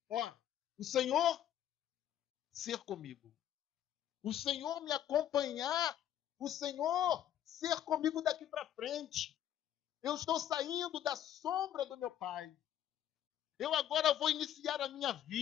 O Senhor ser comigo. O Senhor me acompanhar. O Senhor ser comigo daqui para frente. Eu estou saindo da sombra do meu pai. Eu agora vou iniciar a minha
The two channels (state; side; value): quieter; right; 11.1 dB